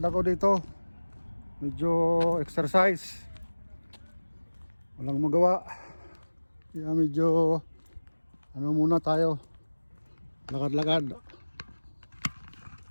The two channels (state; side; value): inverted; both; correlation -1.00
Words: ako dito. Medyo exercise. Walang magawa. Kaya medyo muna tayo. Lakad-lakad.